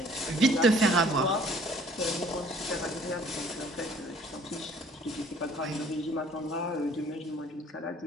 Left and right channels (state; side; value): normal; both; correlation 0.55